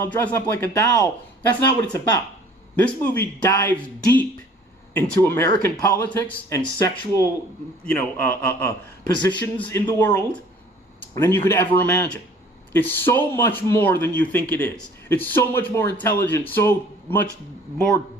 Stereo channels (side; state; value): both; normal; correlation 0.53